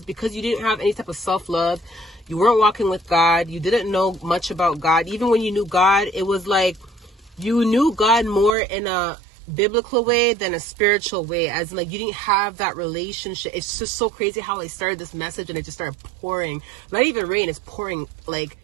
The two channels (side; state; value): left; drops out; at 8.5 s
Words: because you didn't have any type of self-love. You weren't walking with God. You didn't know much about God. Even when you knew God, it was like you knew God more in a biblical way than a spiritual way. As in, like, you didn't have that relationship. It's just so crazy how I started this message and it just started pouring. Not even rain, it's pouring like